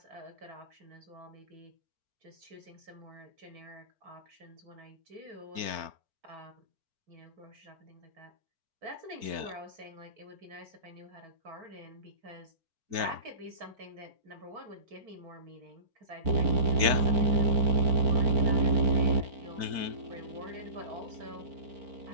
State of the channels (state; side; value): late; left; 4.4 ms